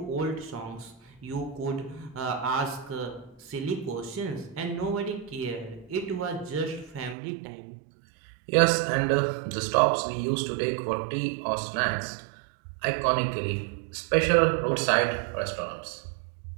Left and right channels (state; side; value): drops out; left; at 7.2 s